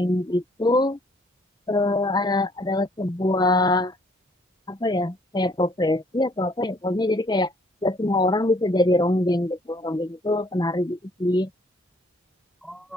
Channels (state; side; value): normal; both; correlation 0.61